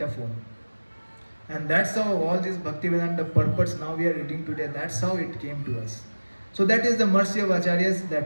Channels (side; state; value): both; inverted; correlation -1.00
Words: And that's how all these Bhaktivedanta purports now we are reading today, that's how it came to us. So that is the mercy of Acharyas